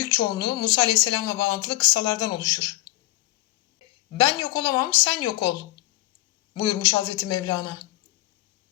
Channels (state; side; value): quieter; right; 17.8 dB